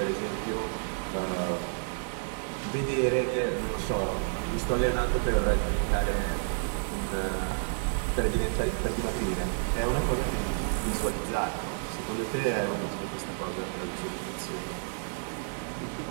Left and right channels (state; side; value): silent; left; 58 dB below the other